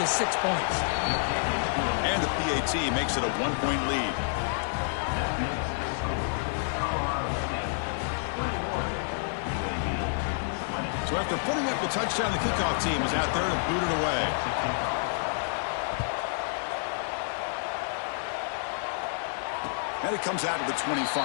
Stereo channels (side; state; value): right; silent; 59 dB below the other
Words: 6 points. And the PAT makes it a 1-point lead. So after putting up the touchdown, the kickoff team is out there to boot it away. And it comes out to the